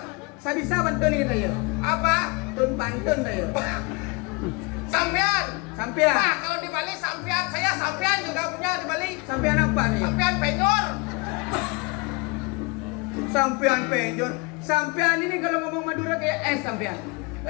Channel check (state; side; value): quieter; right; 28.3 dB